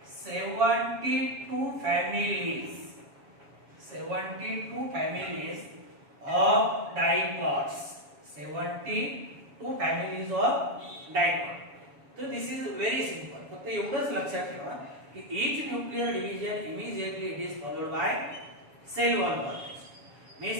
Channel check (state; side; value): late; left; 7.2 ms